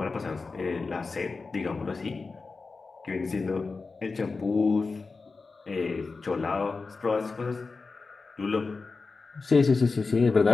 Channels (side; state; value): right; quieter; 4.1 dB